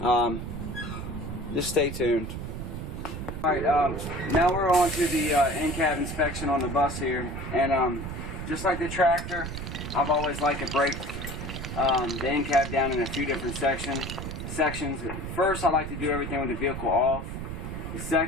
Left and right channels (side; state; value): right; noise; rumble, 6 dB below the sound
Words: Just stay tuned. Alright, now we're on to the in-cab inspection on the bus here, and just like the tractor, I've always liked to break the in-cab down in a few different sections. First, I like to do everything with the vehicle off.